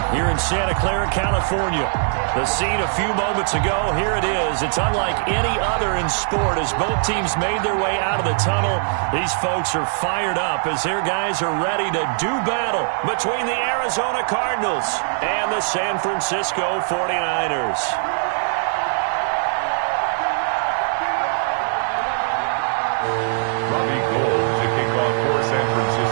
here in Santa Clara, California. The scene a few moments ago, here it is. It's unlike any other in sport as both teams made their way out of the tunnel. These folks are fired up as their guys are ready to do battle between the Arizona Cardinals and the San Francisco 49ers.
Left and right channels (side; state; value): left; silent; 61 dB below the other